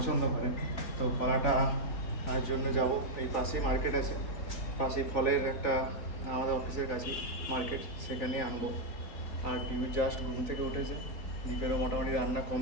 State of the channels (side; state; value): right; late; 4.2 ms